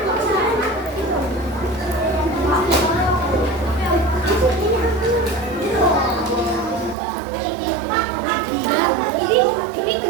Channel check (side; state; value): left; drops out; at 7.0 s